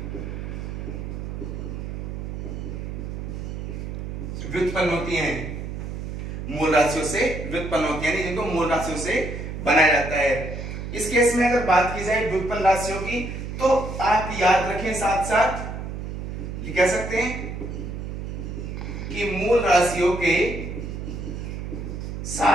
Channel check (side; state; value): right; noise; hum, 6 dB below the sound